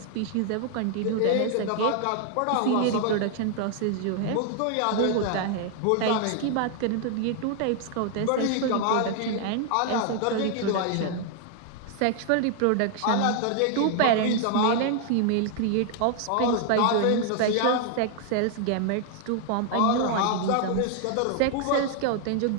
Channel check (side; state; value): both; different; correlation 0.00